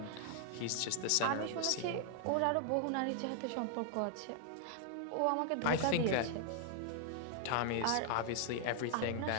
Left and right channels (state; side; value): different; both; correlation 0.00